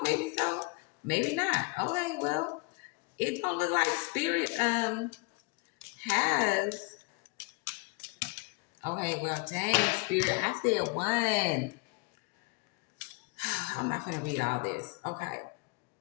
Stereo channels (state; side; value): quieter; right; 27.3 dB